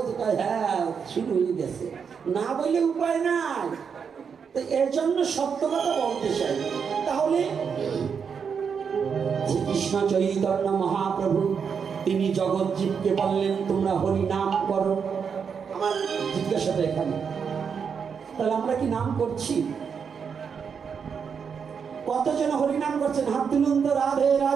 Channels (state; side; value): quieter; left; 6.5 dB